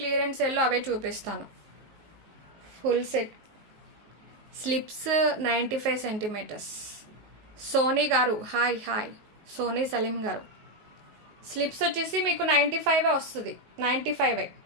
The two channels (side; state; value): left; late; 19 ms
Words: సేల్లో అవే చూపిస్తాను. Full set slips 95 centimetres. Soni గారు హాయ్ హాయ్. సోనీ సలీం గారు స్లిప్స్ వచ్చేసి మీకు 95 వస్తుంది.